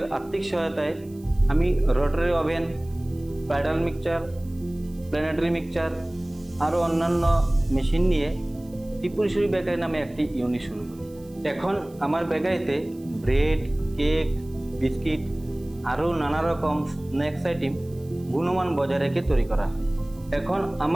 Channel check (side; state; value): right; noise; hiss, 27 dB below the sound